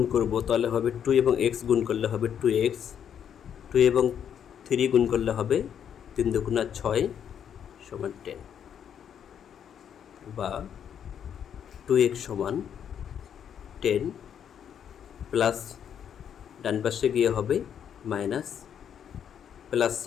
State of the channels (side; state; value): right; quieter; 8.7 dB